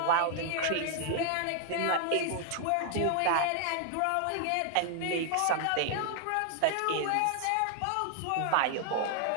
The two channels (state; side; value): different; both; correlation 0.00